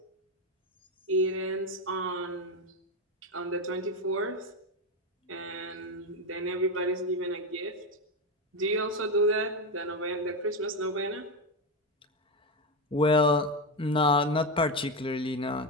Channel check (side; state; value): both; normal; correlation 0.13